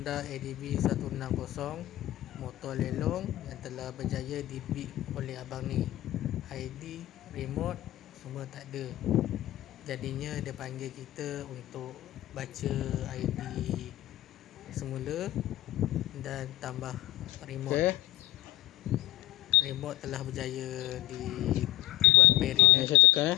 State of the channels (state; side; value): quieter; right; 16.4 dB